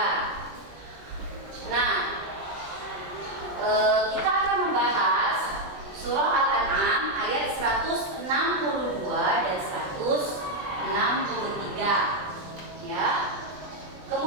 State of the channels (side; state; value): left; late; 20 ms